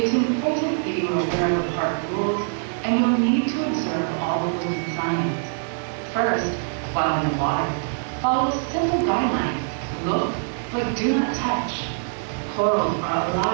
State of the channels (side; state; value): left; silent; 63 dB below the other